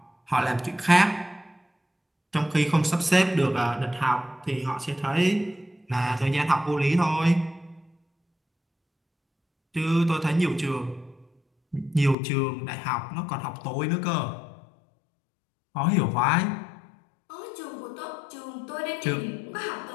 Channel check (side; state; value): right; drops out; at 12.2 s